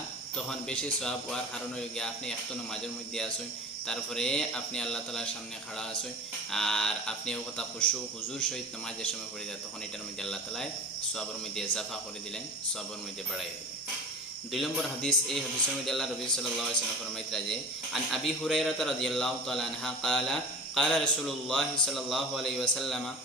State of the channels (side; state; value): both; normal; correlation 0.36